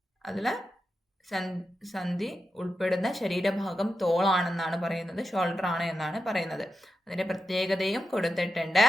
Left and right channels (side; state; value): both; normal; correlation 0.89